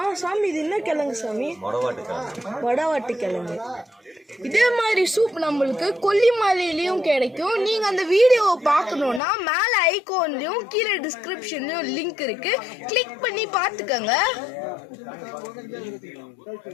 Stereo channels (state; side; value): drops out; right; at 9.2 s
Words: சாமி இது என்ன கிழங்கு சாமி? வடவாட்டு கிழங்கு. இதே மாதிரி சூப் நம்மளுக்கு கொல்லிமலையிலயும் கிடைக்கும். நீங்க அந்த வீடியோவை பார்க்கணும்னா மேல ஐகான்லயும் கீழே டிஸ்கிரிப்ஷன்லயும் லிங்க் இருக்கு, கிளிக் பண்ணி பார்த்துக்கங்க.